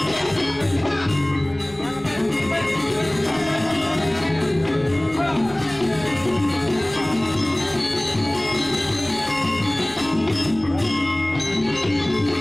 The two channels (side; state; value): right; noise; rumble, 22 dB below the sound